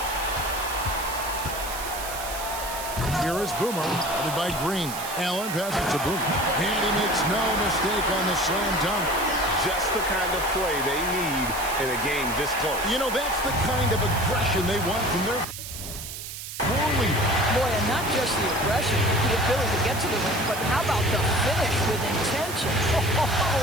Here is Boomer, headed by Green. Allen passes to Boomer. And he makes no mistake on the slam dunk. Just the kind of play they need in a game this close. You know, that's the kind of aggression they want from their floor leader. Boy, and not just the aggression, the ability to get to the rim, but how about the finish with intention?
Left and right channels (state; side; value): noise; right; hiss, 9 dB below the sound